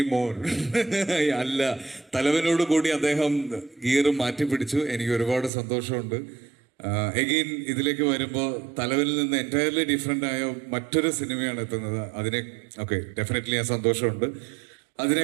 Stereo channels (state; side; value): drops out; left; at 5.5 s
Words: മോർ അല്ല. തലവനോട് കൂടി അദ്ദേഹം ഗിയർ മാറ്റി പിടിച്ചു. എനിക്ക് ഒരുപാട് സന്തോഷമുണ്ട്. എഗെയിൻ ഇതിലേക്ക് വരുമ്പോൾ തലവനിൽ നിന്ന് എൻറ്റയർലി ഡിഫറെൻ്റ് ആയ മറ്റൊരു സിനിമയാണ് എത്തുന്നത്. ഡെഫിനറ്റ്ലി ആ സന്തോഷമുണ്ട്.